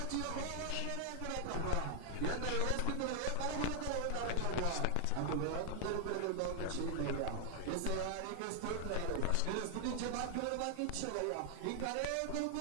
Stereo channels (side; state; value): both; different; correlation 0.00